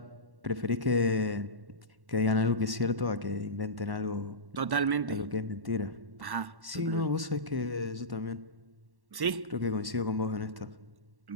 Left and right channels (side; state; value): left; late; 1.1 ms